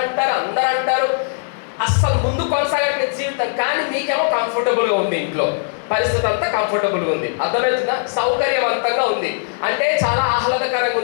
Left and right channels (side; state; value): right; silent; 66 dB below the other